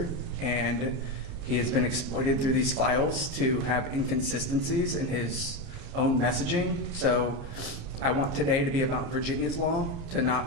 and he has been exploited through these files to have inconsistencies in his own messaging. So I want today to be about Virginia's law, to not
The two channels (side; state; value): left; late; 29 ms